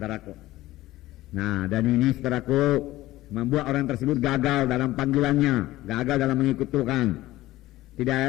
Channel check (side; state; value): right; quieter; 16.7 dB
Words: Nah, dan ini, saudaraku, membuat orang tersebut gagal dalam panggilannya, gagal dalam mengikut Tuhan. Tidak